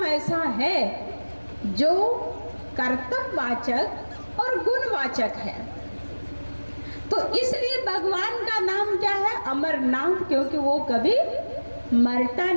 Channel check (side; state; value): both; inverted; correlation -1.00